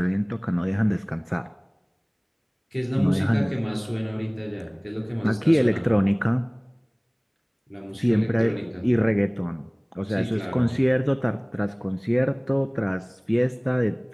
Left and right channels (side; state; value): both; identical; correlation 1.00